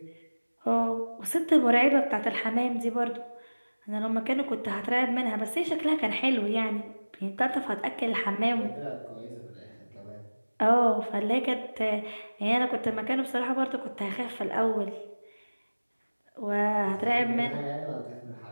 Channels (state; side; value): inverted; both; correlation -1.00